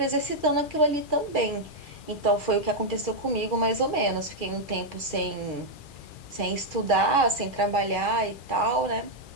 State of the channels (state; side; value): late; right; 2.4 ms